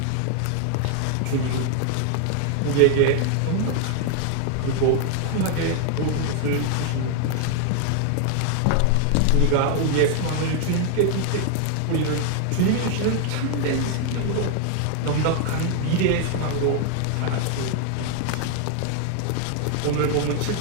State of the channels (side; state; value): both; different; correlation 0.00